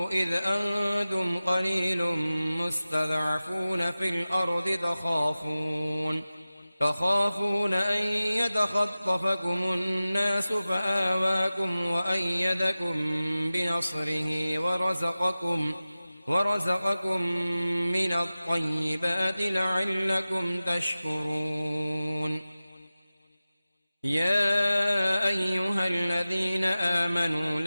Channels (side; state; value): both; inverted; correlation -0.96